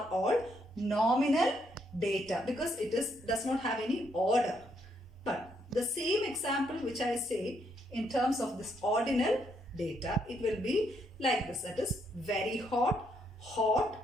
all nominal data because it does not have any order. But the same example which I say in terms of this ordinal data, it will be like this. That is, very hot, hot,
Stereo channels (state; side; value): normal; both; correlation 0.74